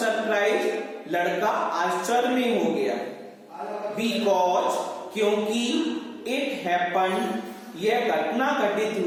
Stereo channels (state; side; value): identical; both; correlation 1.00